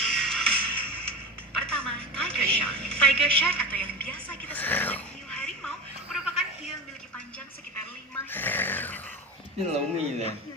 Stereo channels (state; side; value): normal; both; correlation 0.25